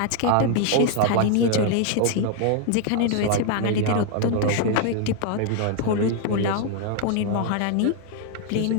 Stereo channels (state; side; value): different; both; correlation 0.00